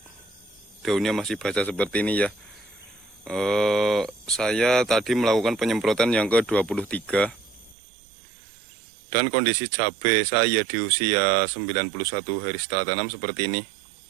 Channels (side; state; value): left; drops out; at 7.8 s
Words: Daunnya masih basah seperti ini ya. Saya tadi melakukan penyemprotan yang ke-23. Dan kondisi cabai saya di usia 91 hari setelah tanam seperti ini.